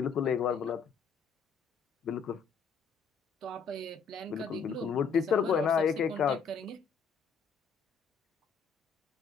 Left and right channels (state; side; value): quieter; right; 5.9 dB